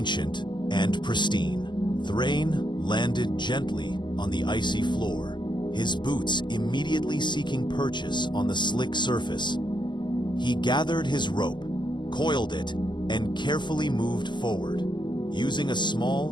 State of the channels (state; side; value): late; right; 0.22 ms